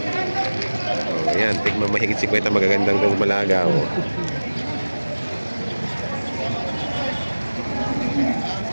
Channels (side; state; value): both; inverted; correlation -1.00